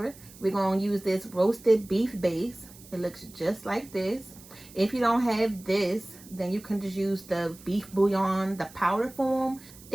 we're going to use this roasted beef base. It looks just like this. If you don't have this, then you can just use the beef bouillon, the powder form.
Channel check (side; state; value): right; noise; hiss, 21 dB below the sound